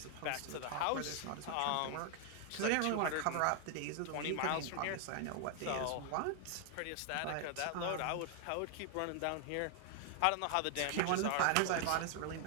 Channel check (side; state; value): both; different; correlation 0.00